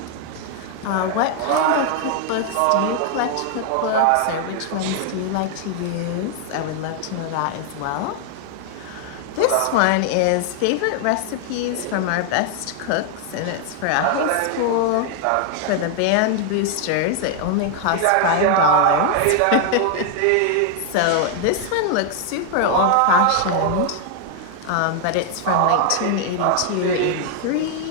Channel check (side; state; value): both; different; correlation 0.00